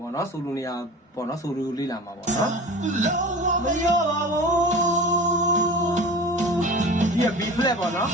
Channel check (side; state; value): both; normal; correlation 0.37